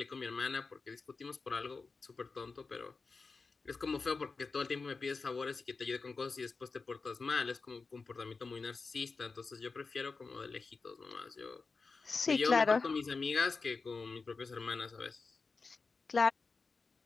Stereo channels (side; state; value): right; quieter; 4.3 dB